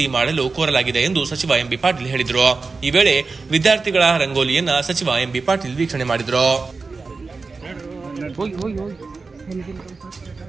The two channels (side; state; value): left; quieter; 4.2 dB